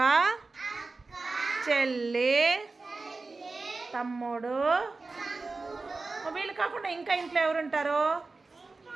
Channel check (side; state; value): left; quieter; 3.7 dB